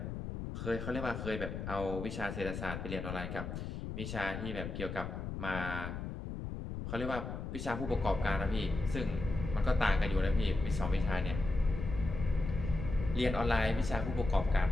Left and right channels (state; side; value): noise; left; rumble, 6 dB below the sound